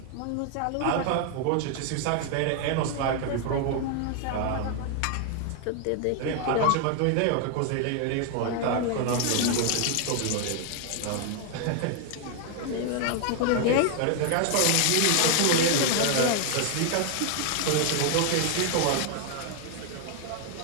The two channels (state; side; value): different; both; correlation 0.00